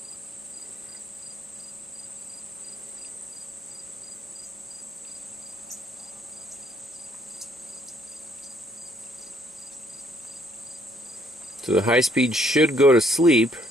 So the high speed should go to sleep.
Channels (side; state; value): both; normal; correlation 0.66